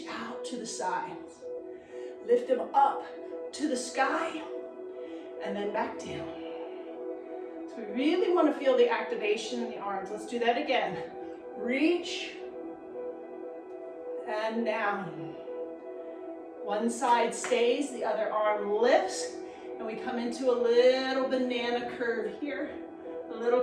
out to the sides. Lift them up to the sky. And then back down. So we really want to feel the activation in the arms. Let's do that again. Reach. And down. One side stays, the other arm lifts. And we come into a little banana curve here, a little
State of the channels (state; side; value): identical; both; correlation 1.00